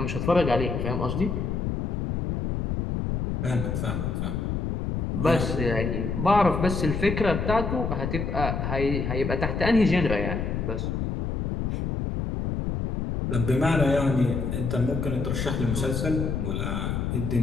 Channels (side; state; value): left; noise; rumble, 2 dB below the sound